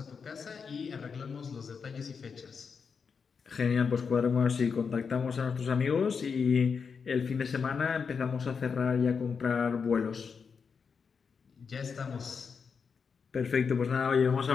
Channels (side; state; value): right; quieter; 5.8 dB